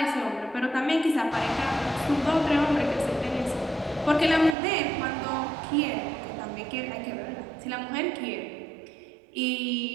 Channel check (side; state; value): left; drops out; at 4.5 s